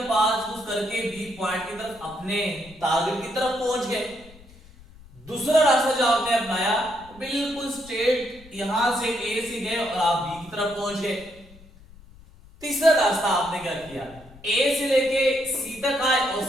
पाथ चूज करके बी पॉइंट की तरफ, अपने टारगेट की तरफ पहुंच गए। दूसरा रास्ता जो आपने अपनाया बिल्कुल स्ट्रेट यहां से ए से गए और आप बी की तरफ पहुंच गए। तीसरा रास्ता आपने क्या किया? ए से लेके सी तक आए और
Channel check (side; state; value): left; noise; rumble, 22 dB below the sound